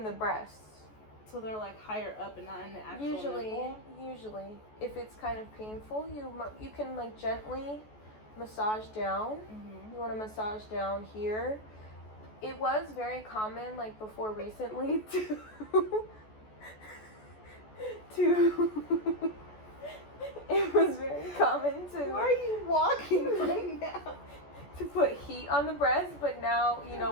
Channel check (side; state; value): right; late; 14 ms